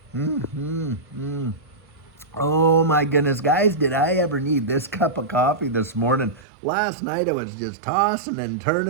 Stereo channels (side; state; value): left; drops out; at 6.5 s